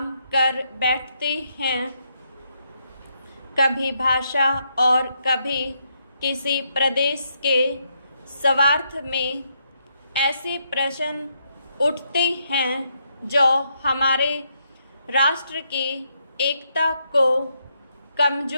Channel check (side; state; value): both; inverted; correlation -0.77